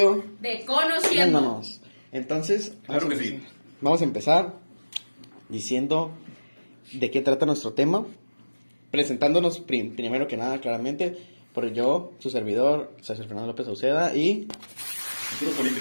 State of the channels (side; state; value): both; inverted; correlation -1.00